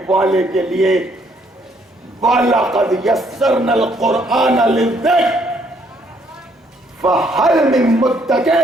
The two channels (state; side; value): normal; both; correlation 0.68